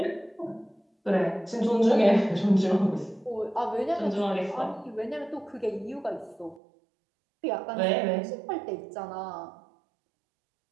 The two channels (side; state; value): left; drops out; at 6.6 s